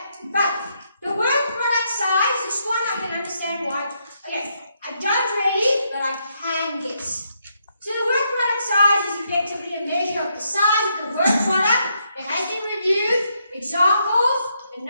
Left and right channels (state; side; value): inverted; both; correlation -0.77